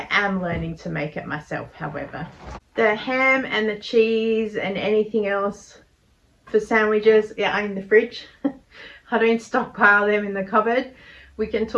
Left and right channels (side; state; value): both; identical; correlation 1.00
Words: am learning to make it myself, however. The ham and the cheese and anything else for sandwiches are in the fridge. I don't stockpile them in the cupboard. We can